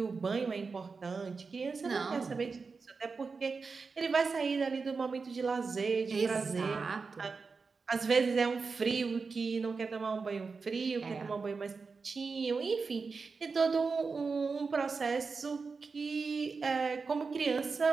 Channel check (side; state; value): left; quieter; 4.7 dB